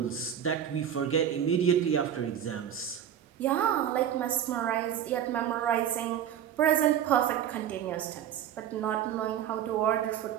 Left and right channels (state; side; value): quieter; left; 9.7 dB